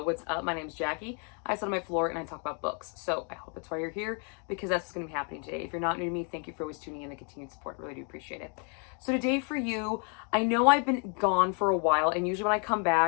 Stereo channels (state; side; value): quieter; right; 38.9 dB